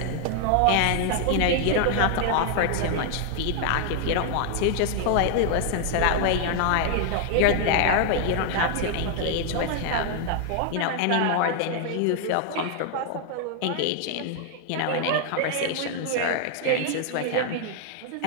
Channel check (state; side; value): different; both; correlation 0.00